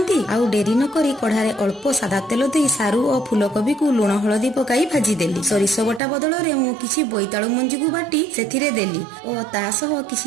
ଆଉ ଡେରି ନ କରି କଢାରେ ଅଳ୍ପ ସାଦା ତେଲ ଦେଇ ସାରୁ ଓ ଫୁଲକୋବିକୁ ଲୁଣ ହଳଦୀ ପକାଇ ଭାଜିଦେଲି। ସୋରିଷ ବଟା ବଦଳରେ ମୁଁ କିଛି ବୋଇତାଳୁ ମଞ୍ଜିକୁ ବାଟି ସେଥିରେ ଦେଲି ଓ ତା ସହ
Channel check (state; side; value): drops out; left; at 6.0 s